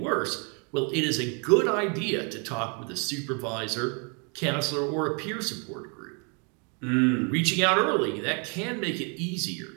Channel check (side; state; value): left; quieter; 36.2 dB